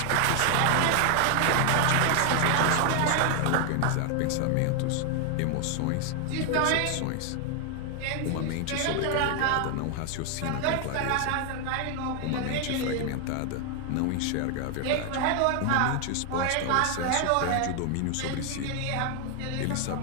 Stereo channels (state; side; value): different; both; correlation 0.00